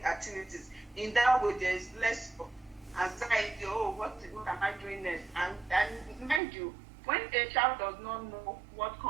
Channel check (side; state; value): left; drops out; at 6.4 s